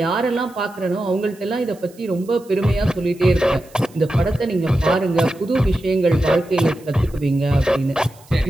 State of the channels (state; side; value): noise; right; hiss, 26 dB below the sound